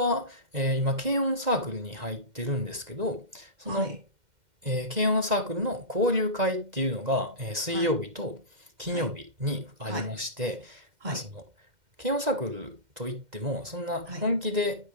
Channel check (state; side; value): late; left; 1.9 ms